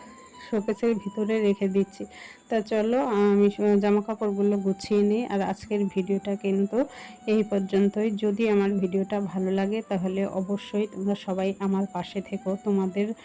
শোকেসের ভিতরে রেখে দিচ্ছি। তা চলো আমি জামা কাপড়গুলো গুছিয়ে নিই। আর আজকের ভিডিওটা কিন্তু এই পর্যন্তই। যদি আমার ভিডিওটা ভালো লাগে তাহলে অবশ্যই তোমরা সবাই আমার পাশে থেকো। তোমাদের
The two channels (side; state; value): both; identical; correlation 1.00